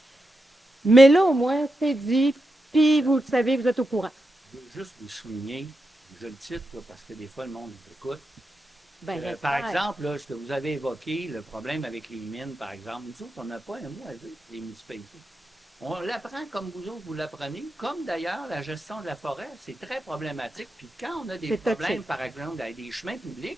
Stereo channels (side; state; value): both; normal; correlation 0.87